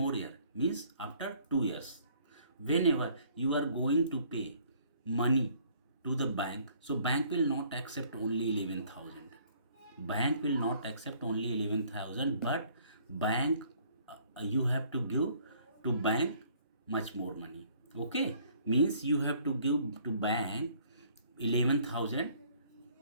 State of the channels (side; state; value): both; inverted; correlation -0.60